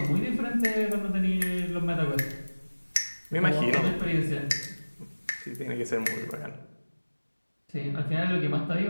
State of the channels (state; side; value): inverted; both; correlation -1.00